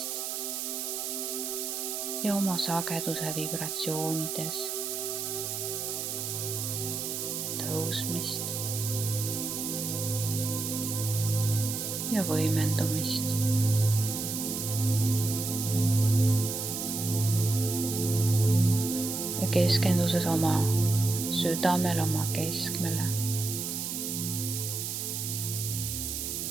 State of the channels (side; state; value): right; noise; hiss, 3 dB below the sound